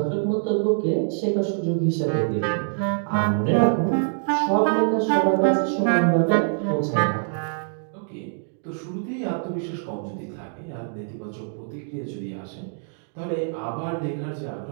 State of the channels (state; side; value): silent; left; digital silence